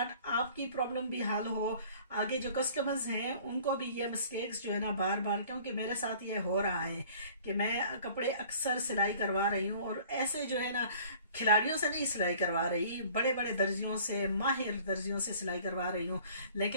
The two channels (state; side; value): inverted; both; correlation -0.50